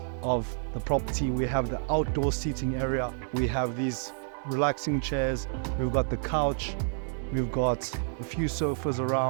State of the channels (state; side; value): silent; left; digital silence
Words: of the property, we have the outdoor seating area. We have these relaxing chairs. We've got the couch. We've got a few sofas